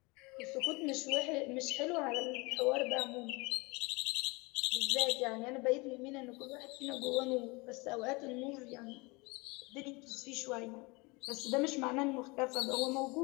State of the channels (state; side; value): quieter; right; 26.5 dB